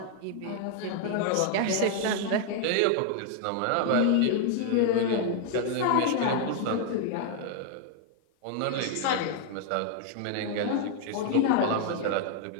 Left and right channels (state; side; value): different; both; correlation 0.00